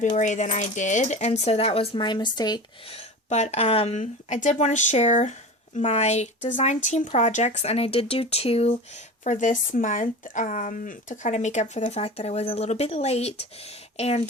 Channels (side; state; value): both; normal; correlation 0.32